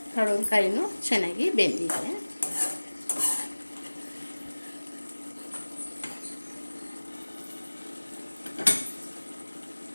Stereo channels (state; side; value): inverted; both; correlation -1.00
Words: ಪಡವಲಕಾಯಿನೂ ಚೆನ್ನಾಗಿ ಬೆಂದಿದೆ.